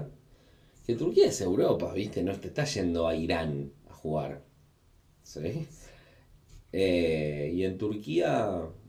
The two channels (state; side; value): identical; both; correlation 1.00